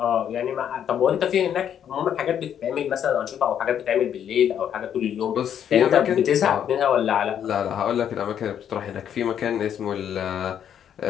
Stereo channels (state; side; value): quieter; right; 9.2 dB